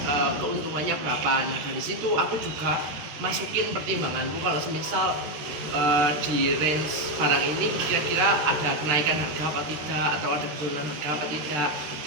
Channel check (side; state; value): left; late; 13 ms